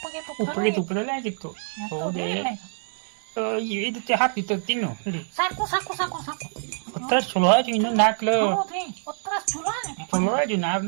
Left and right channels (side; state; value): left; silent; 61 dB below the other